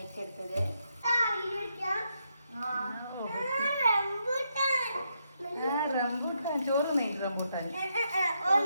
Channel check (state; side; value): inverted; both; correlation -0.80